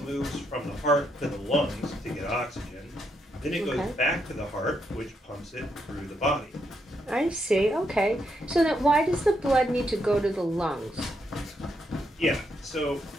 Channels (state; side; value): normal; both; correlation 0.79